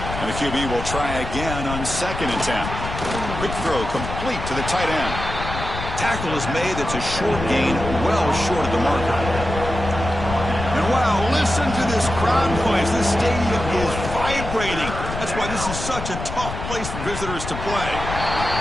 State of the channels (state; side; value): noise; left; rumble, 7 dB below the sound